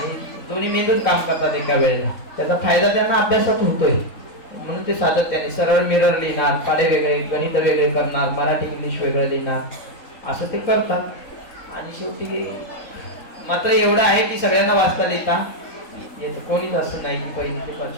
दोन्ही मेंदूच काम करतात एका वेळेला. त्याचा फायदा त्यांना अभ्यासात होतोय. म्हणून ते सातत्याने सरळ मिरर लिहिणार, पाढे वेगळे, गणित वेगळे करणार, मराठी इंग्लिश वेगळं लिहिणार, असं ते करतात. आणि शेवटी मात्र एवढं आहे की सगळ्यांना वाचता लिहिता येतं. कोणीच असं नाही की 1ली ते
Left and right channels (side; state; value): right; late; 3.8 ms